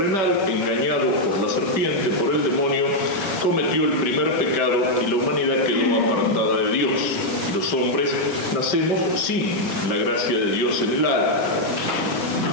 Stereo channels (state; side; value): late; right; 5.2 ms